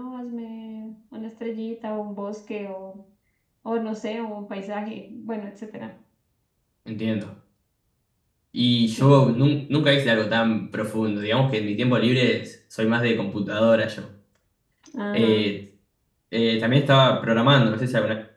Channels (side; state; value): both; identical; correlation 1.00